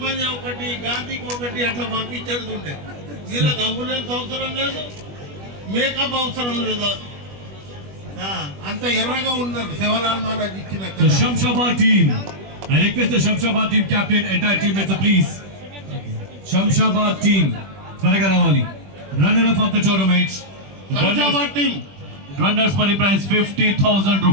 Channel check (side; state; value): left; late; 21 ms